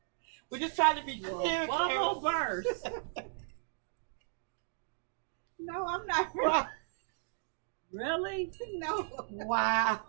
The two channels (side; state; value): left; silent; digital silence